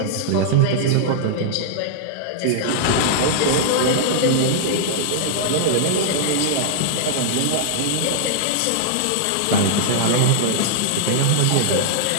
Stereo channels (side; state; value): both; different; correlation -0.01